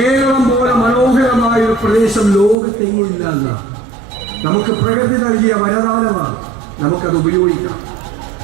പോലെ മനോഹരമായ ഒരു പ്രദേശം ലോകത്തെങ്ങില്ല എന്നാണ്. നമുക്ക് പ്രകൃതി നൽകിയ വരദാനമാണ്, നമുക്കത് ഉപയോഗിക്കാം.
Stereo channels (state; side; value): drops out; left; at 2.6 s